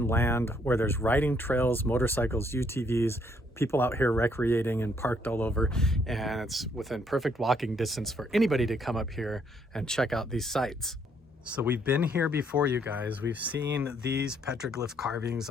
land where there's riding trails, motorcycles, UTVs, people out here recreating and parked all over, and it's within perfect walking distance for anybody to come up here and check out these sites. So we've been here before, you guys. We've seen these petroglyph carvings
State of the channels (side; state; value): both; normal; correlation 0.69